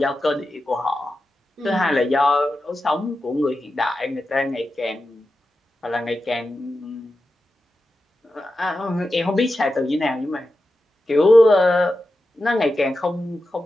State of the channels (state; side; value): normal; both; correlation 0.91